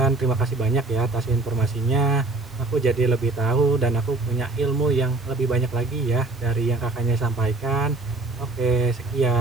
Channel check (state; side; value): quieter; left; 3.2 dB